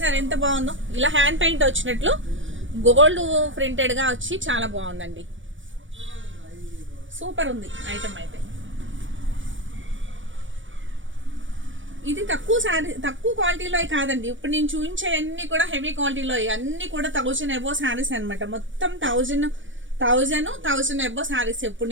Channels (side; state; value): left; late; 0.56 ms